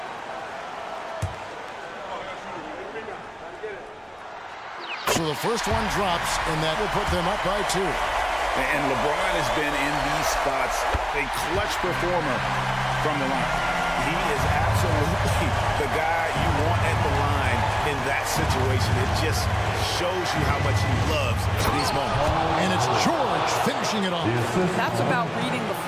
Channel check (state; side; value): identical; both; correlation 1.00